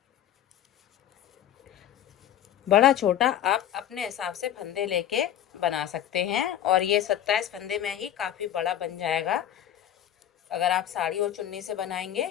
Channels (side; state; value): right; quieter; 11.0 dB